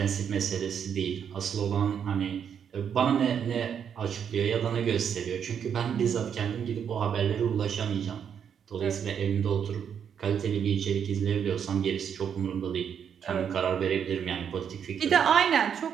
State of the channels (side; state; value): left; quieter; 7.9 dB